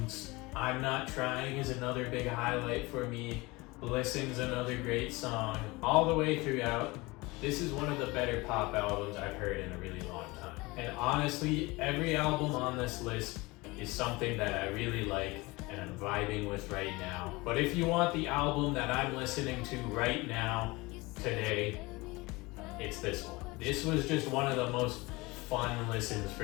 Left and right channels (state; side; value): quieter; right; 23.1 dB